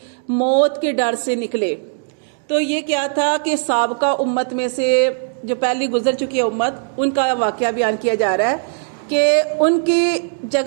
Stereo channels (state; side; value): silent; left; 67 dB below the other